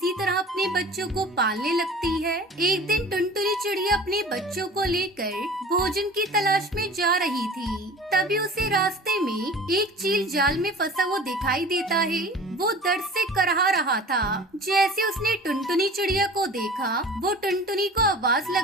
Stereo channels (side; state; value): both; normal; correlation 0.41